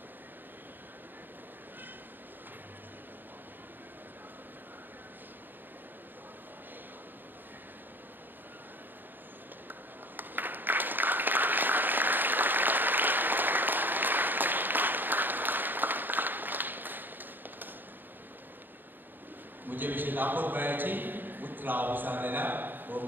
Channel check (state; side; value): late; left; 0.092 ms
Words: मुझे विषय लापोर बयाची उतराव विचारलेल्या व